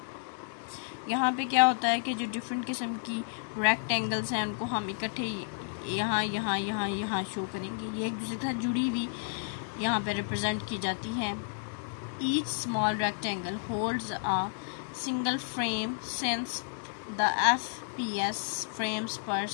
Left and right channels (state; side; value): silent; right; digital silence